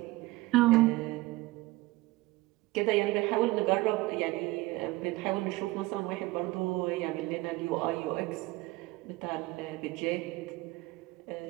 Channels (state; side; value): quieter; left; 20.3 dB